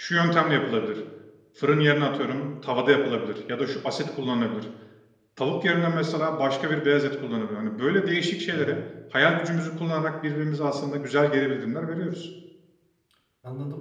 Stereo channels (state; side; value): identical; both; correlation 1.00